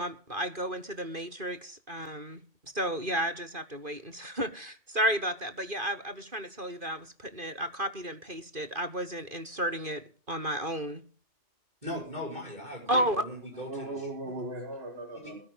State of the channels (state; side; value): late; left; 2.5 ms